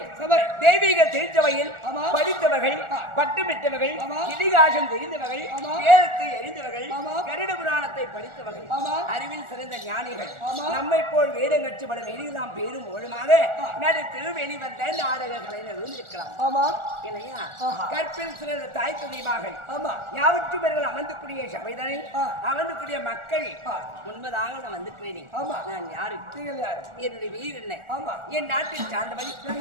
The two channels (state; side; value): late; left; 1.4 ms